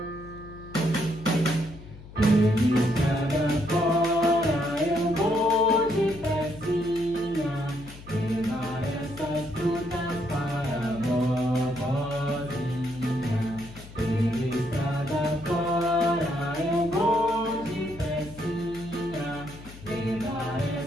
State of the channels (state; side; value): noise; left; hum, 17 dB below the sound